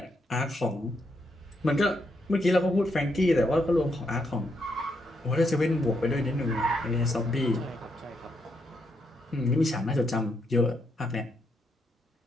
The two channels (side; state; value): both; normal; correlation 0.79